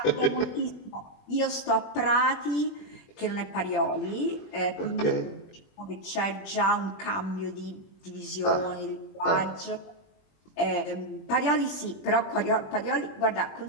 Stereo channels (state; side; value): late; right; 21 ms